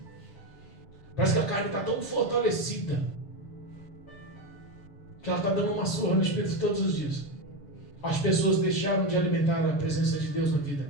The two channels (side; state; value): right; late; 6.7 ms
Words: Parece que a carne está tão fortalecida que ela está dando uma surra no espírito todos os dias. As pessoas deixaram de alimentar a presença de Deus na vida.